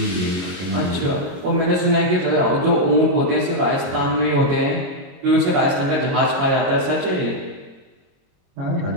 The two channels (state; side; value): late; left; 22 ms